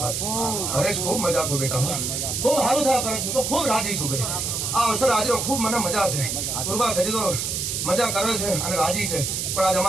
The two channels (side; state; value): right; noise; hiss, 1 dB below the sound